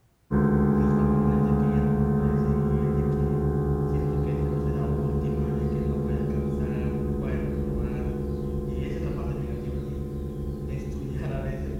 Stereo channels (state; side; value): identical; both; correlation 1.00